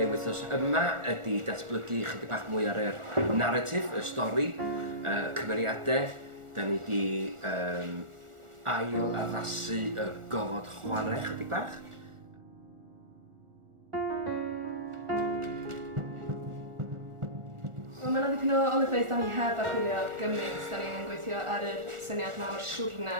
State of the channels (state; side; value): late; left; 1.4 ms